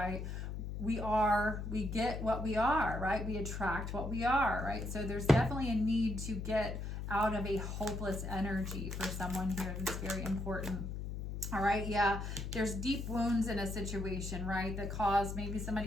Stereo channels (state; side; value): noise; left; hum, 5 dB below the sound